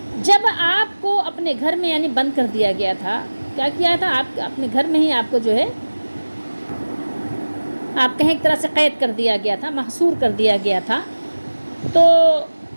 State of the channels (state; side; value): inverted; both; correlation -1.00